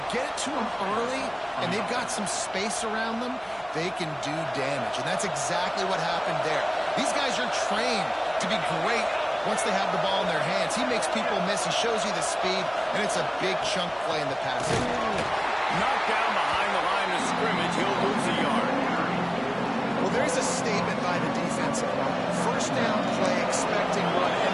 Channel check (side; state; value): both; identical; correlation 1.00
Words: get it to them early and they've got some space around them, they can do damage. And that's exactly what happened there. These guys are trained to be great once they have the ball in their hands. He makes people miss. He shows you the speed, and it's a big chunk play in the passing. Knocked down behind the line of scrimmage. He'll lose a yard. Well, there's a statement by the defense. First down play, expecting run, and